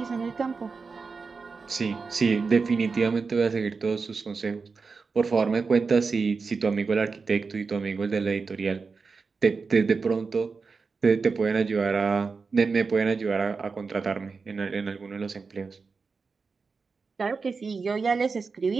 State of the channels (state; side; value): quieter; left; 4.7 dB